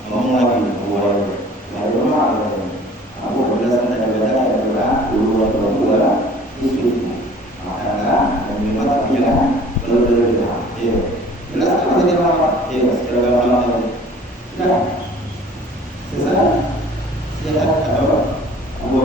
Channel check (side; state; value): both; normal; correlation 0.50